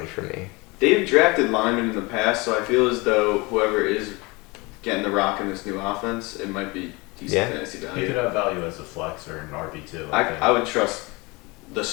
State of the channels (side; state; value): right; quieter; 25.4 dB